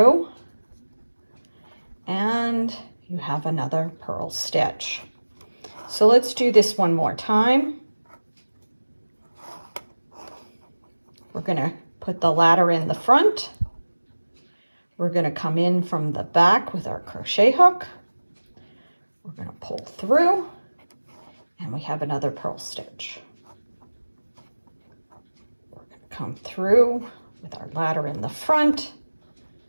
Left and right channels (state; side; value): inverted; both; correlation -1.00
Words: and you have another purl stitch. So let's do this one more time. We're going to put the ladder in the front. We're going to come in from the back with our crochet hook. We're going to pull through, and we have another purl stitch. We're going to come through with our ladder in the front,